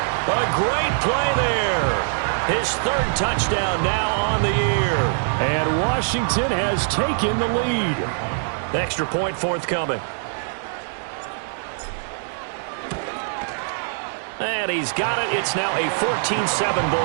A great play there. His third touchdown now on the year. And Washington has taken the lead. Extra point forthcoming. And he's got it. It's now a 14-7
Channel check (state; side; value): silent; left; digital silence